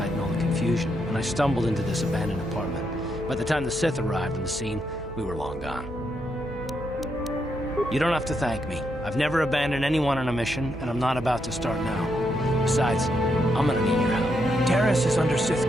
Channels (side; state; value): both; normal; correlation 0.79